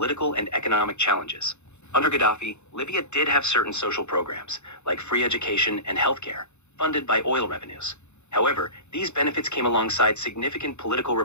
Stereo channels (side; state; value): right; late; 0.82 ms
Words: and economic challenges. Under Gaddafi, Libya did have certain social programs, like free education and healthcare, funded by oil revenues. However, these benefits came alongside significant political